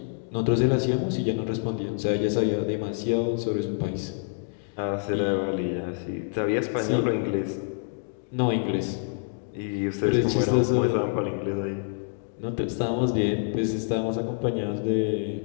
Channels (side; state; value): right; silent; digital silence